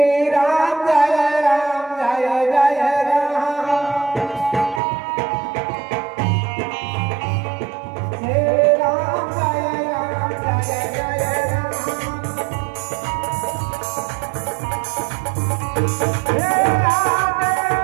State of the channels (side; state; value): left; drops out; at 4.8 s